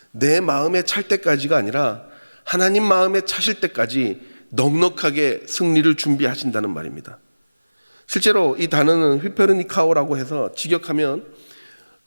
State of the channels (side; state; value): both; inverted; correlation -1.00